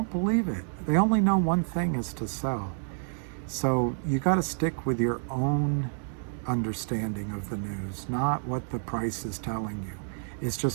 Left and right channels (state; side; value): silent; left; digital silence